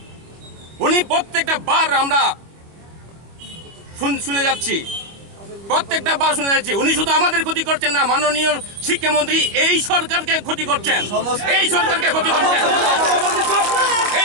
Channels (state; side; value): late; left; 25 ms